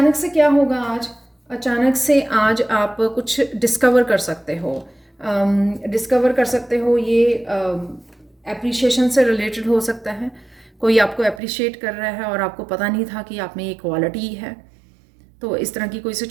से क्या होगा आज? अचानक से आज आप कुछ डिस्कवर कर सकते हो। डिस्कवर कर सकते हो, ये एप्रिशिएशन से रिलेटेड हो सकता है। कोई आपको एप्रिशिएट कर रहा है और आपको पता नहीं था कि आप में ये क्वालिटी है। तो इस तरह की कोई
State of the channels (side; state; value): left; drops out; at 11.4 s